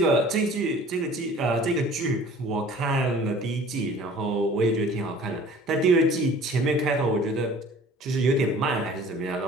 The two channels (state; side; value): normal; both; correlation 0.48